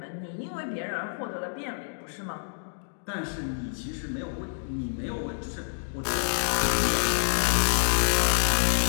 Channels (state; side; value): silent; right; digital silence